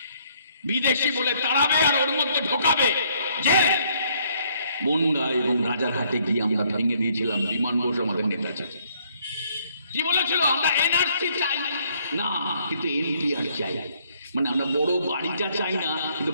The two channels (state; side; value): inverted; both; correlation -0.67